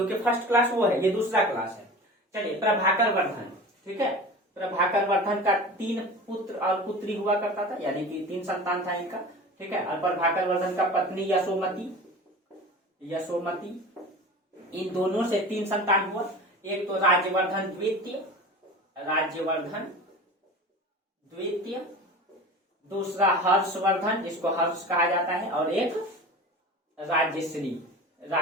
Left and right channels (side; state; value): both; normal; correlation 0.35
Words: फर्स्ट क्लास वो है, ये दूसरा क्लास है। चलिए प्रभाकर वर्धन, ठीक है, प्रभाकर वर्धन का 3 पुत्र और पुत्री हुआ करता था, यानी कि 3 संतान था इनका, ठीक है। और प्रभाकर वर्धन का पत्नी यशोमती, इन दोनों से 3 संतान हुआ। एक तो राज्यवर्धन द्वितीय, दूसरा हर्षवर्धन जिसको हर्ष कहा जाता है, और एक राज्यश्री